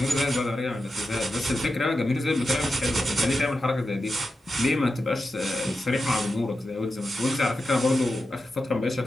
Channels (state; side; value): normal; both; correlation 0.90